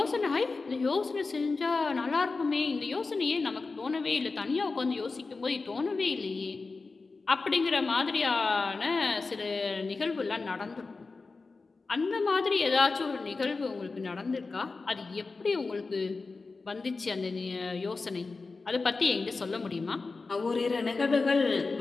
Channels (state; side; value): quieter; right; 4.0 dB